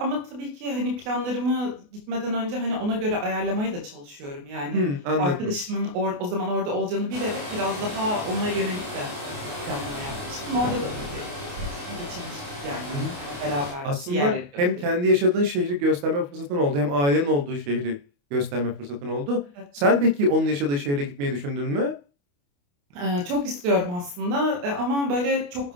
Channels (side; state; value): left; late; 28 ms